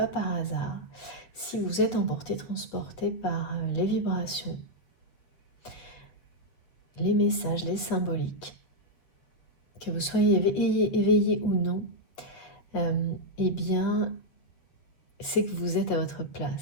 par hasard. Si vous êtes emporté, transporté par les vibrations, les messages, les symboliques, que vous soyez éveillé ou non, eh bien, c'est que vous êtes à votre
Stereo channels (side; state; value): right; late; 7.8 ms